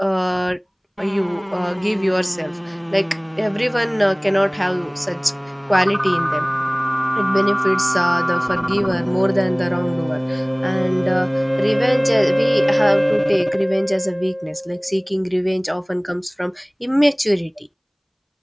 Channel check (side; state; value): both; identical; correlation 1.00